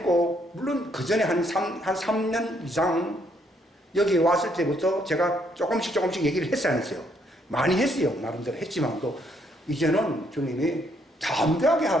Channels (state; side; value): normal; both; correlation 0.71